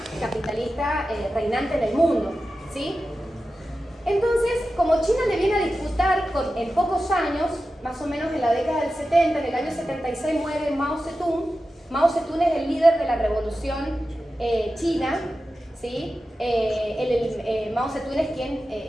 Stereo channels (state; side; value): normal; both; correlation 0.93